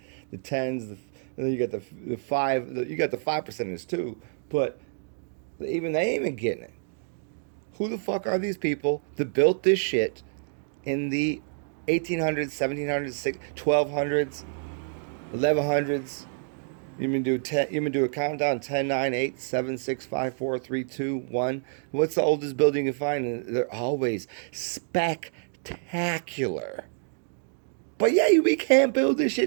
the 10s, and then you got the 5, you got the 5 percenters too, but even they ain't even getting it. Who the fuck are these people that built this shit in the 1800s, 1700s, 1200s, 1100s? You do a countdown: 10, 9, 8, 7, 6, 5, 4, 3, 2, 1. What's the oldest building you find? And they're always spectacular. But yeah, we can't build this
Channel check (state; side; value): silent; left; digital silence